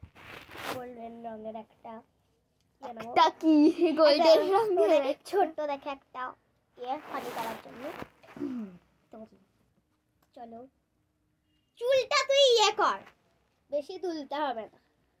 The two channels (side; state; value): both; identical; correlation 1.00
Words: কি গোল্ডেন রঙের ছোট্ট দেখে একটা ফানি করার জন্য। চলো, চুলটা তুই কর, বেশি তুলতে হবে না।